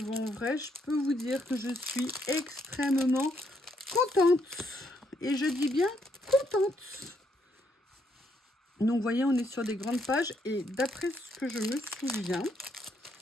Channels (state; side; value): normal; both; correlation 0.74